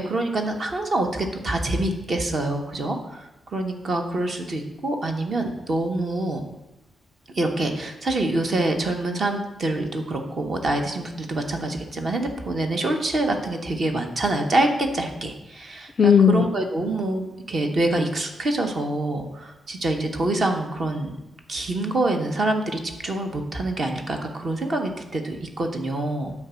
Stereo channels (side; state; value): both; normal; correlation 0.77